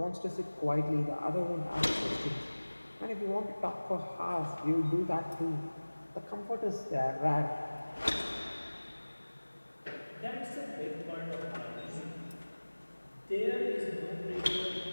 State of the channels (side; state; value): both; inverted; correlation -1.00